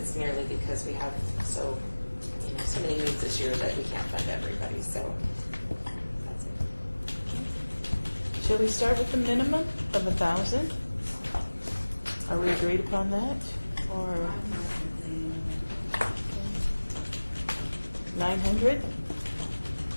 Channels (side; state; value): both; inverted; correlation -1.00